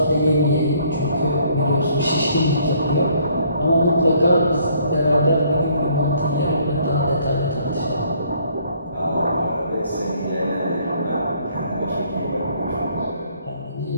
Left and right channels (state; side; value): inverted; both; correlation -0.63